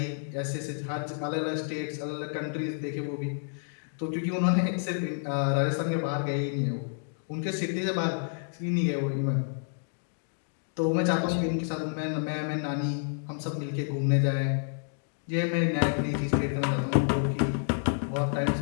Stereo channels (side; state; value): right; silent; digital silence